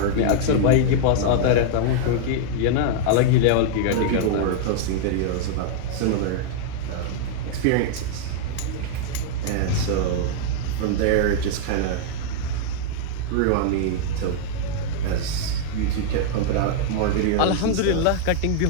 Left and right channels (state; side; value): different; both; correlation -0.01